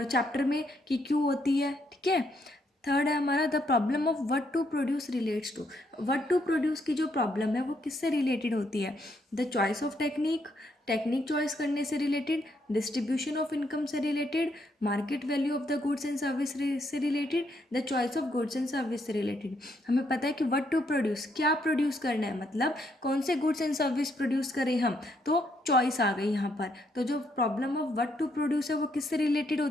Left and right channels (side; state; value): both; normal; correlation 0.74